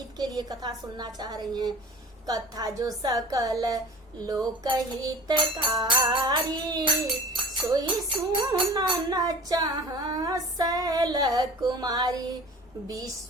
के लिए कथा सुनना चाह रही हैं। कथा जो सकल लोक हितकारी, सोई सुनन चाह शैल कुमारी।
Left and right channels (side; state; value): both; normal; correlation 0.42